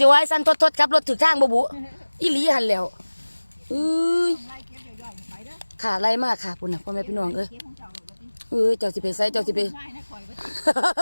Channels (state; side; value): inverted; both; correlation -1.00